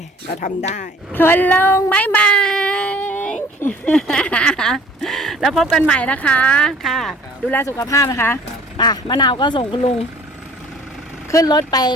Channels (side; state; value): both; normal; correlation 0.52